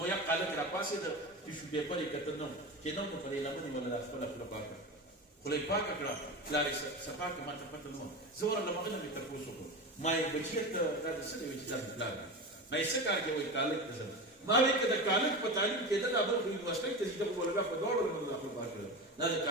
یا قالک راپاسېده ټیشو پیپر یې کته نه چې نه نو په دې لمنې ولا دا خپله خوله پاکه خوله یې پاکه کړه پلار یې صفا کړه ما ته پته نه وه زه ورغلم هغه نه مې تپوس وکړو ما یې بچیه ته دا د څه دی وایي چې دا د پلار دی ما یې څه کار کوې وایي کالک ته ځم ما وایي که د کالج په تعلیم کېده دا بل خو یونیورسټۍ ته ځي ده خو مولویان په دواړو لمنو داخل پاک کړل دا د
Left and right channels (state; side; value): normal; both; correlation 0.25